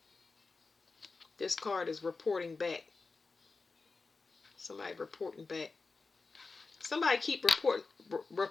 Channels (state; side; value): quieter; right; 4.1 dB